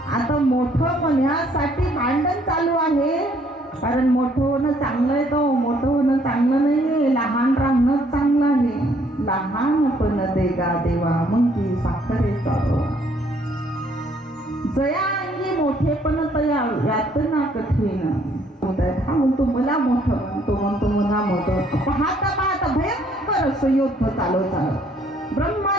आता मोठं म्हणण्यासाठी भांडण चालू आहे. कारण मोठं होणं चांगलं आहे, तो मोठं होणं चांगलं नाहीये, लहान राहणं चांगलं आहे. लहानपण देगा देवा मग ती साखरेचा जया अंगी मोठेपण तया यातना कठीण. हा म्हणतो मला मोठं म्हणतो, म्हणतो मला मोठं. पाहता पाहता भयंकर असं युद्ध चालू झालं.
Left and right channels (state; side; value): normal; both; correlation 0.65